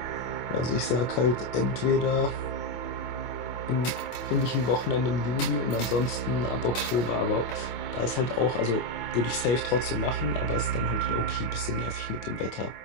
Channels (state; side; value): late; right; 25 ms